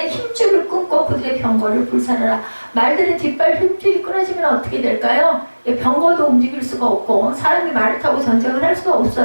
힘줄을 끊고 그들의 병거를 불살라라. 말들의 뒷발 힘줄이 끊어지면 어떻게 될까요? 병거도 움직일 수가 없고 사람이 말을 타고 전쟁을 할 수가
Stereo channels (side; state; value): both; inverted; correlation -1.00